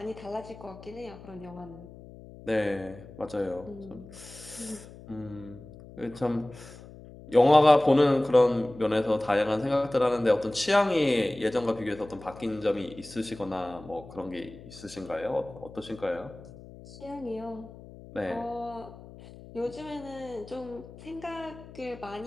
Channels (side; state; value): left; noise; hum, 18 dB below the sound